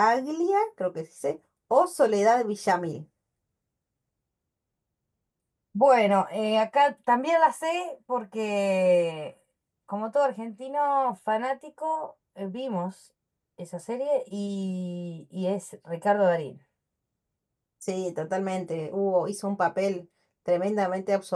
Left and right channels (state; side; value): identical; both; correlation 1.00